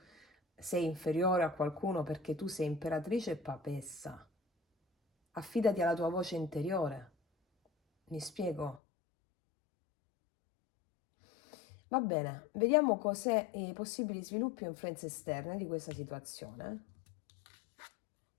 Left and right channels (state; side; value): drops out; right; at 8.8 s